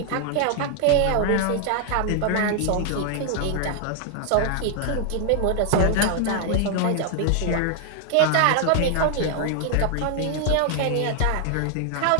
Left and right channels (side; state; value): both; different; correlation 0.00